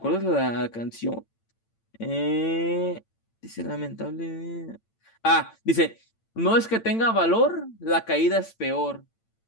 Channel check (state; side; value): late; right; 8.9 ms